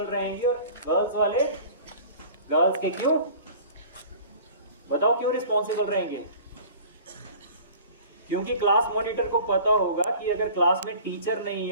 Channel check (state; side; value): inverted; both; correlation -0.44